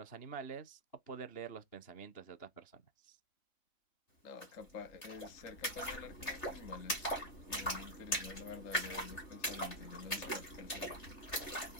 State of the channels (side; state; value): right; late; 3.3 ms